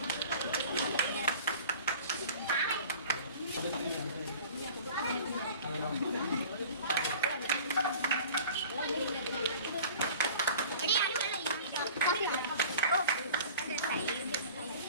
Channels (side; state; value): both; inverted; correlation -0.43